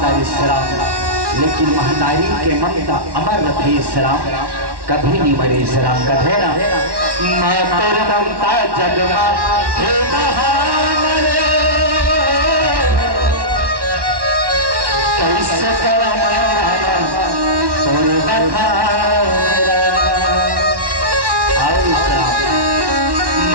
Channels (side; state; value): left; late; 1.1 ms